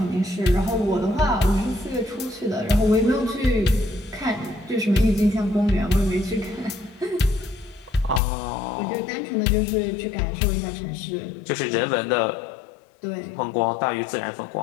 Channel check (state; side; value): drops out; right; at 8.2 s